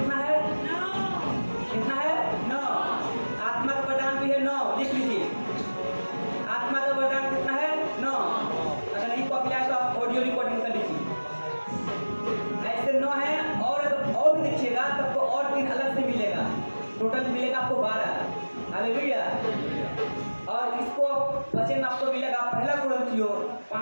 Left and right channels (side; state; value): both; inverted; correlation -1.00